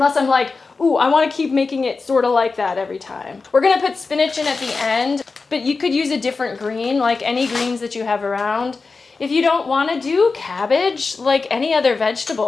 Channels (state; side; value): quieter; right; 4.2 dB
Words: I'm like, ooh, I want to keep making it sort of like that every time. We're going to put spinach in at the end, but you could use a different green, like any greens that you have around. If you don't want to do cabbage, like any other